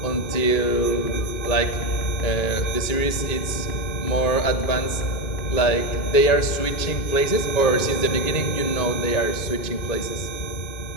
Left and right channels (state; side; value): late; right; 1.9 ms